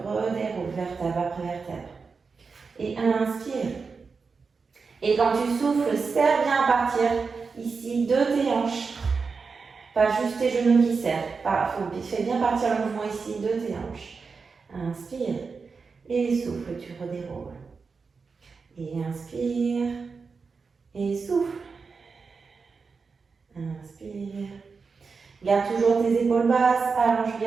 redéroule vertèbre après vertèbre. Et inspire. Et quand tu souffles, serre bien à partir ici de tes hanches. Pas juste tes genoux qui serrent. Fais bien partir le mouvement ici de tes hanches. Inspire. Et souffle, tu redéroules. Et inspire. Et souffle. Inspire. Garde toujours tes épaules basses. Allonge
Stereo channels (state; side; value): quieter; left; 4.9 dB